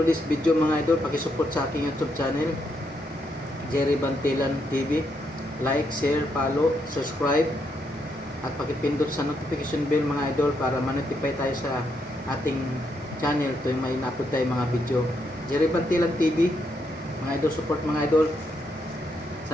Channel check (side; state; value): both; normal; correlation 0.78